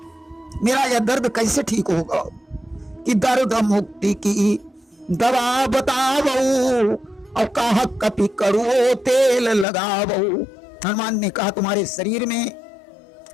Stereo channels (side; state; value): right; drops out; at 9.7 s